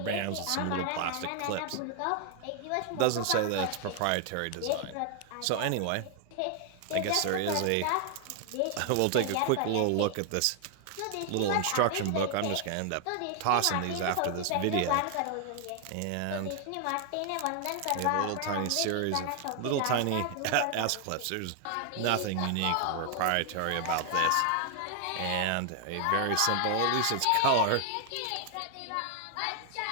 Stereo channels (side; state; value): both; different; correlation 0.00